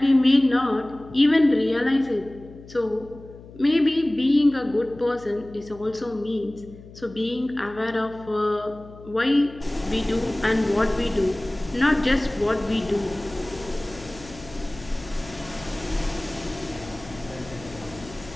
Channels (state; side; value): noise; left; hum, 19 dB below the sound